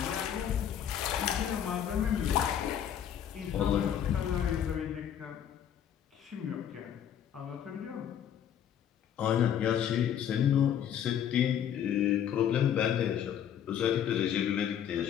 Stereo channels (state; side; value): quieter; right; 9.5 dB